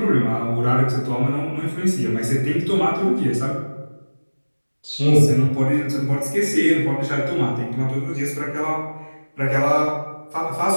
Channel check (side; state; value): both; inverted; correlation -1.00